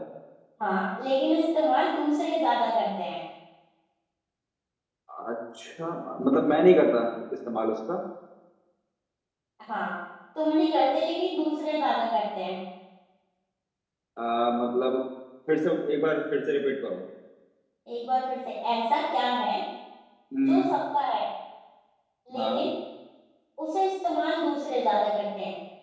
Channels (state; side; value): identical; both; correlation 1.00